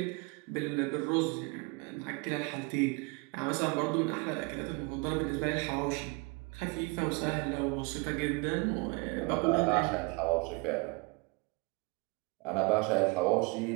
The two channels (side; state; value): left; quieter; 28.1 dB